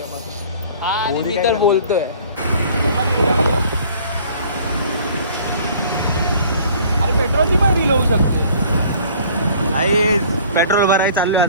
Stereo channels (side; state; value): both; inverted; correlation -0.52